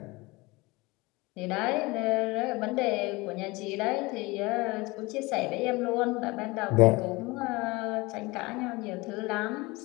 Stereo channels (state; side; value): quieter; right; 23.4 dB